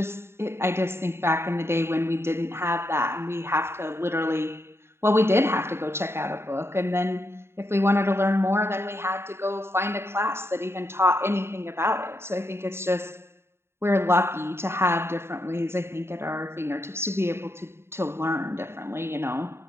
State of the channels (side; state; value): left; late; 0.12 ms